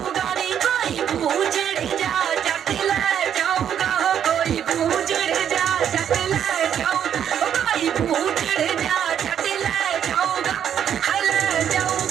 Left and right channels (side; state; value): left; quieter; 9.2 dB